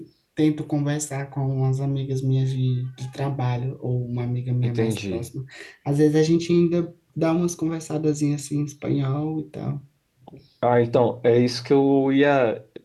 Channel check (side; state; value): both; identical; correlation 1.00